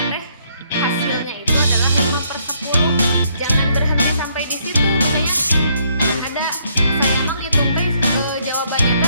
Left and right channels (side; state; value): both; inverted; correlation -0.70